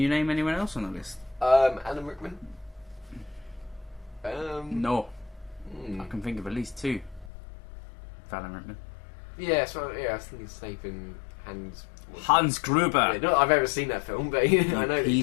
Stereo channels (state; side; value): drops out; right; at 7.3 s